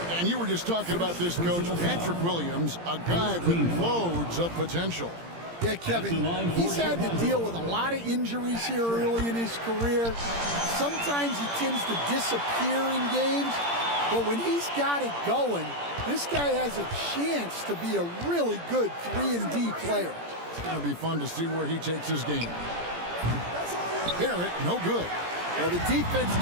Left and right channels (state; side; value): late; left; 17 ms